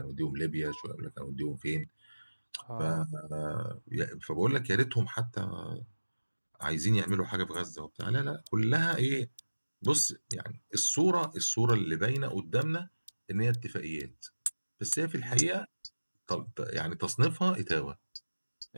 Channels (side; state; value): both; inverted; correlation -1.00